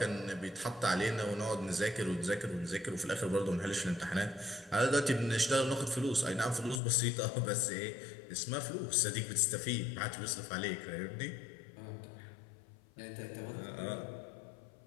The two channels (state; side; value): drops out; right; at 6.8 s